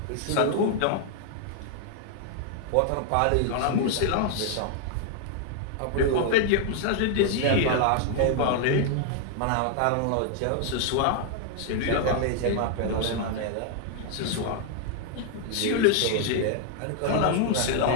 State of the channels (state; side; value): different; both; correlation 0.00